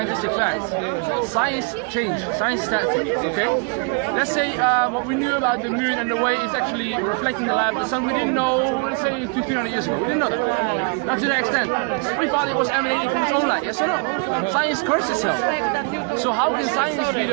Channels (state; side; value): quieter; left; 34.9 dB